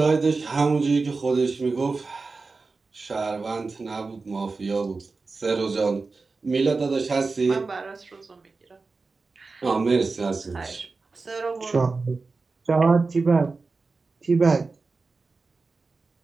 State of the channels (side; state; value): left; quieter; 4.0 dB